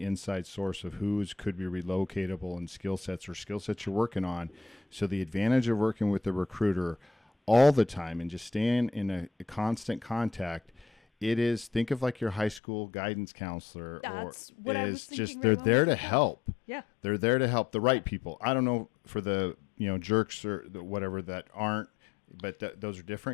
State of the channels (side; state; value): right; drops out; at 12.6 s